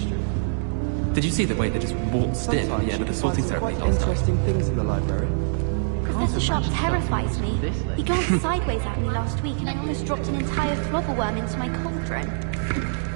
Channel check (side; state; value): left; silent; digital silence